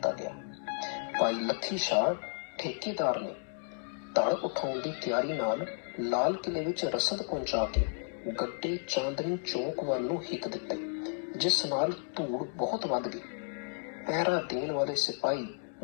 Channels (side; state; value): right; silent; digital silence